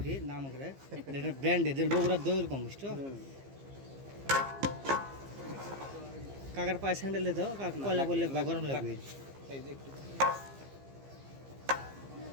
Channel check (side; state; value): left; late; 15 ms